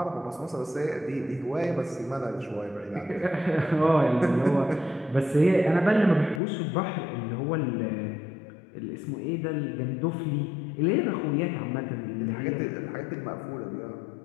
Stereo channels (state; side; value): drops out; right; at 6.4 s